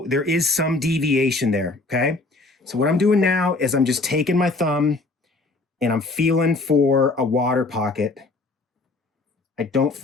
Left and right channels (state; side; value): quieter; right; 3.3 dB